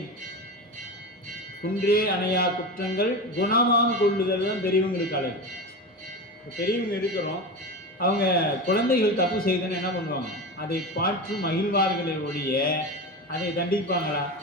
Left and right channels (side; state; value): both; normal; correlation 0.24